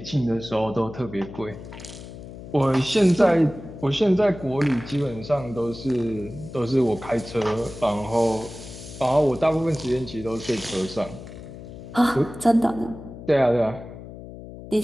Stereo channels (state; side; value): noise; left; hum, 14 dB below the sound